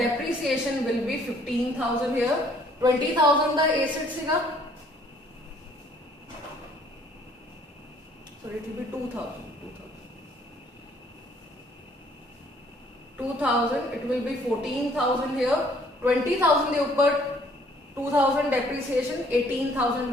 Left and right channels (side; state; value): both; normal; correlation 0.61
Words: will be 15,000 here. 20,000 the asset सीगा, so it will be 2,000. 2,000 it will be 14,000 here. 20,000 के ऊपर 2,000 depreciation, 18,000